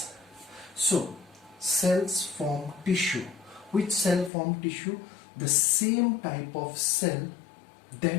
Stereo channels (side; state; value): right; drops out; at 4.3 s